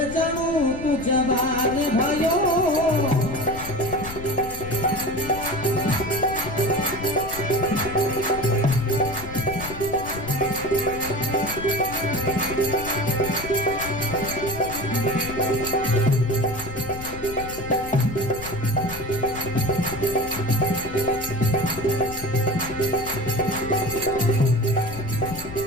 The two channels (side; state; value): left; noise; rumble, 12 dB below the sound